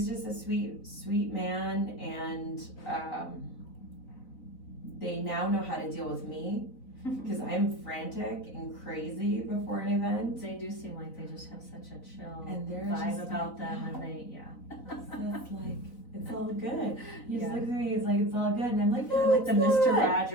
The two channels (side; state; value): right; late; 4.0 ms